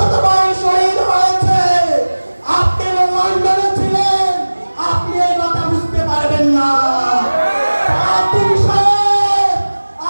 শহীদ হয়েছে। আপনি লন্ডনে ছিলেন, আপনি এই কথা বুঝতে পারবেন না।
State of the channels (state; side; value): inverted; both; correlation -1.00